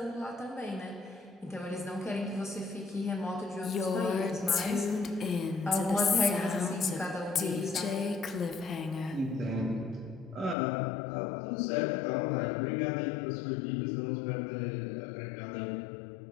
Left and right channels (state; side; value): drops out; right; at 10.6 s